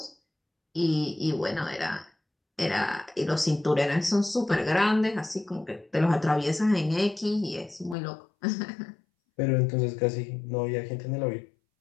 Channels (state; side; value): drops out; right; at 8.0 s